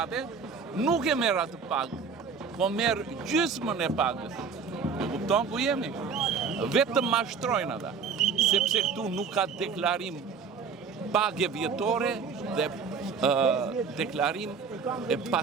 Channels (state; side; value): quieter; left; 5.7 dB